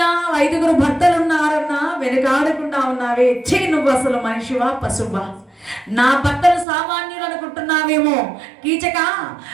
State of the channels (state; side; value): drops out; left; at 6.7 s